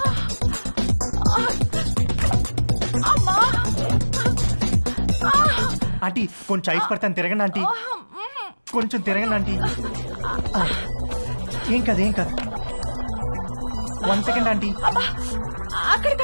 ఆంటీ కొంచెం ఐస్ పడతాను, తిరగండి ఆంటీ, కొంచెం తిరగండి ఆంటీ. ఏం కాదు ఏం కాదు. 1 సెకండ్ ఆంటీ. అక్కడ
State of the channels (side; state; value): both; inverted; correlation -1.00